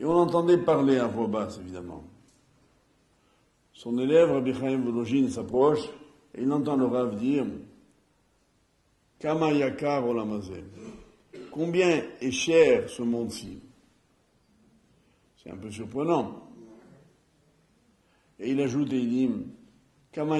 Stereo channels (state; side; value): identical; both; correlation 1.00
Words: on l'entendait parler à voix basse, évidemment. son élève, Rabbi Chaim Volojin, s'approche et il entend le Rav dire Kama yakar olam hazeh. Combien est cher ce monde-ci? C'est un peu surprenant. Et il ajoute et il dit